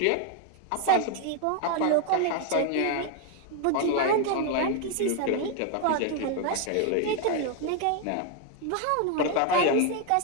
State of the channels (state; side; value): different; both; correlation 0.01